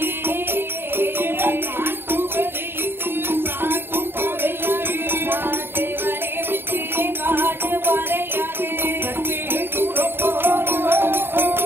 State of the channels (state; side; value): late; left; 0.11 ms